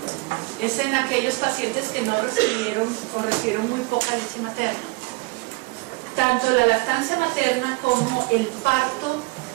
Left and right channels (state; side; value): quieter; left; 25.6 dB